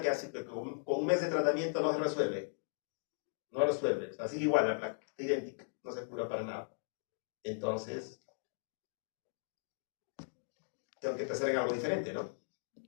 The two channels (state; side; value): silent; right; digital silence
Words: que hace que con un mes de tratamiento no se resuelve. No resuelve. O sea, sigue igual la placa, está idéntica, no se cura para nada. Entonces, tengo que pensar en algo diferente, ¿no?